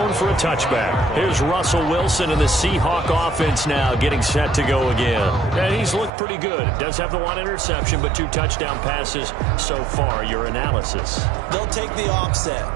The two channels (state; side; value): drops out; left; at 6.1 s